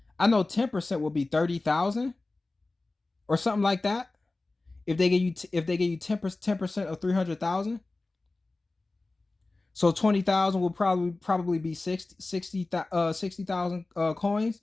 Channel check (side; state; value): right; quieter; 3.2 dB